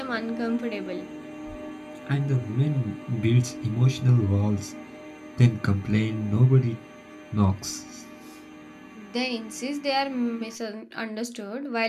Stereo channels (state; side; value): identical; both; correlation 1.00